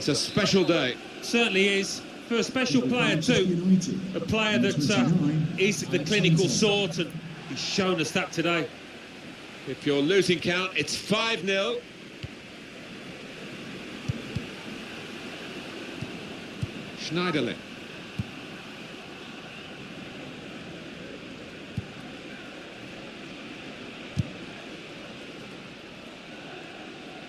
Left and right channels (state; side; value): identical; both; correlation 1.00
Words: a special day. Certainly is. For a special player too. A player that is the clinical sort, and he's shown us that today. If you're losing count, it's 5-0. Schneiderlin.